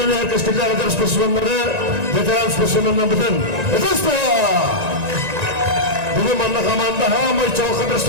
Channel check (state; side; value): late; left; 1.9 ms